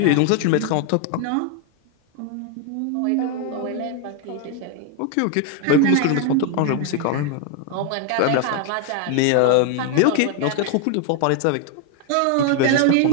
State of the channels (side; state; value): both; different; correlation 0.01